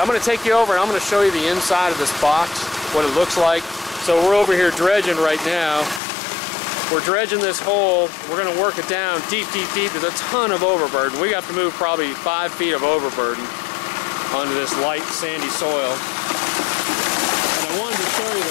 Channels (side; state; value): right; drops out; at 6.0 s